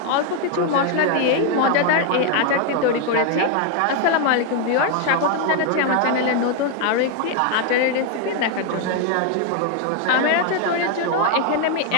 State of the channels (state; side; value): different; both; correlation 0.01